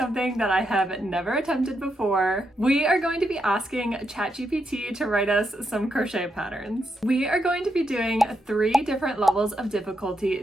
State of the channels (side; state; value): both; normal; correlation 0.82